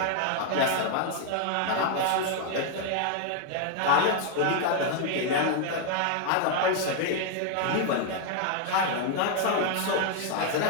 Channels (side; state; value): both; different; correlation 0.00